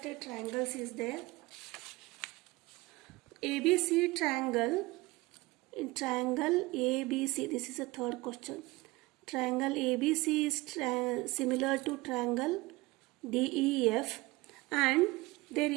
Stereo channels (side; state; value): left; quieter; 21.5 dB